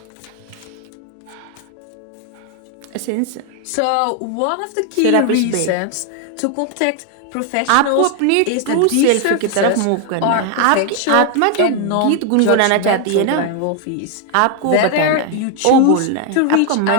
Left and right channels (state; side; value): different; both; correlation 0.00